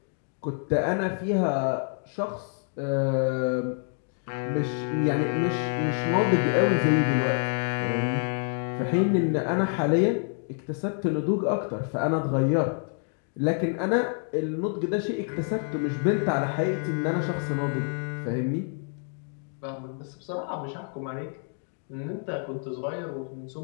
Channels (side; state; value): right; silent; 57 dB below the other